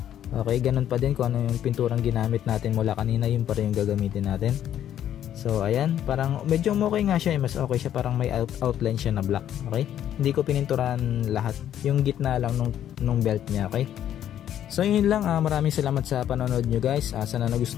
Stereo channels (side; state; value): right; quieter; 10.7 dB